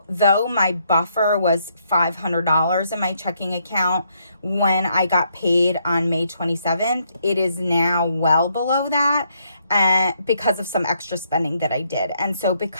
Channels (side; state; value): both; inverted; correlation -0.74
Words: though my buffer was $500 in my checking account when I got paid on May 27th, it is now well below that. Because of some extra spending that I did. And so